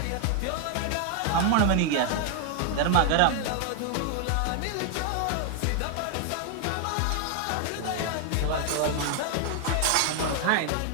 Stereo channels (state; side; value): different; both; correlation 0.00